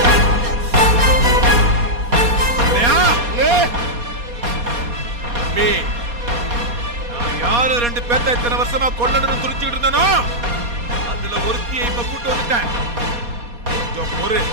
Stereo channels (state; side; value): late; left; 4.2 ms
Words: யாரு 2 பேர்த்த இத்தனை வருஷமா கொல்லணும்னு துடிச்சுக்கிட்டு இருந்தானோ, அதுல ஒருத்தியை இப்ப கூட்டு வந்துட்டேன். கொஞ்சம் ஒரு